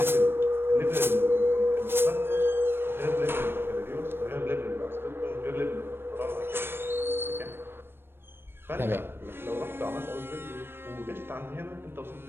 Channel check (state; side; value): late; left; 0.10 ms